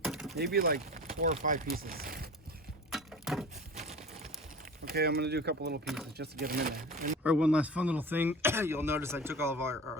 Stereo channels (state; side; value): normal; both; correlation 0.36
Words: Maybe like 4 or 5 pieces. Okay, I'm gonna do a couple little pieces just to get them in there. All right, one last fun little thing. You'll notice I took all of our